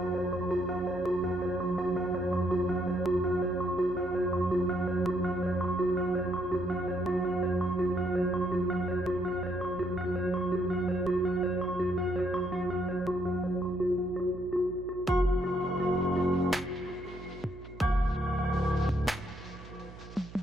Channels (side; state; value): right; noise; hum, 16 dB below the sound